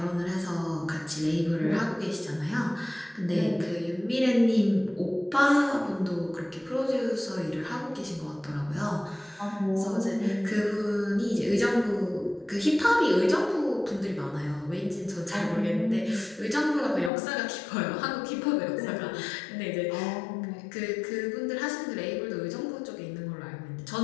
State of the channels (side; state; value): right; drops out; at 17.1 s